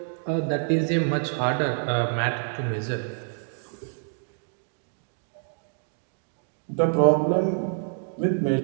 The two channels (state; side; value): silent; left; digital silence